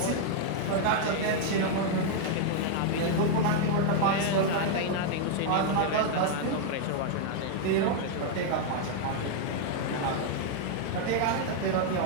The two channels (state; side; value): different; both; correlation 0.00